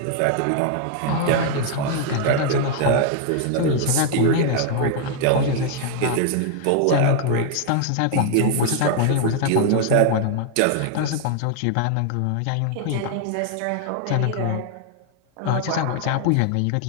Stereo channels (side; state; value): both; different; correlation 0.00